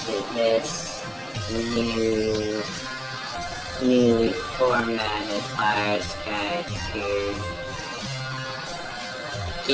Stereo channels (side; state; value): both; identical; correlation 1.00